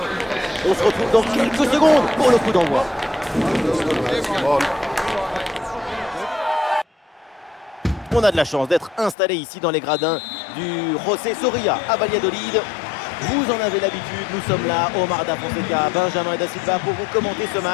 On se retrouve dans quelques secondes pour le coup d'envoi. On a de la chance d'être installé ici dans les gradins du José Zorrilla à Valladolid. Vous en avez l'habitude, nous sommes là, Omar Da Fonseca, Benjamin Da Silva pour vous commenter ce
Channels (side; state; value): right; drops out; at 9.2 s